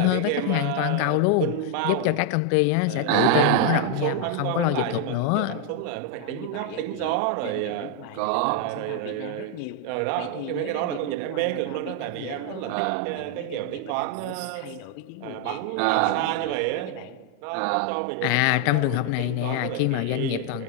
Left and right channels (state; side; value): different; both; correlation 0.00